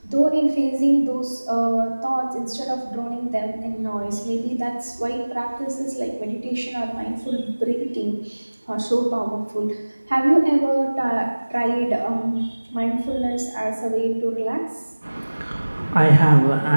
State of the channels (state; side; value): inverted; both; correlation -1.00